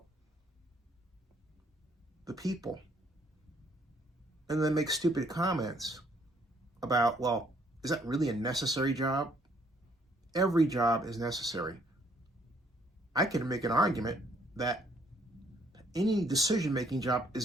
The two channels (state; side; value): normal; both; correlation 0.65